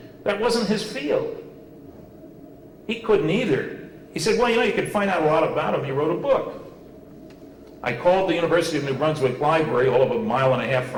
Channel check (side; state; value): both; identical; correlation 1.00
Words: That wasn't his field. He couldn't either. He said, well, you could find out a lot about him. He wrote a book. I called the University of New Brunswick Library, all of a mile and a half